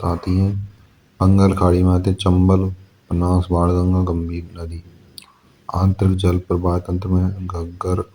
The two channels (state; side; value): identical; both; correlation 1.00